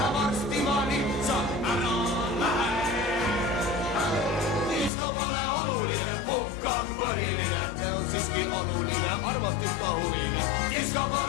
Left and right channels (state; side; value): drops out; right; at 4.9 s